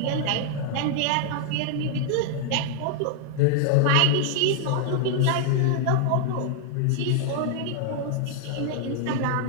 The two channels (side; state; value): both; different; correlation 0.00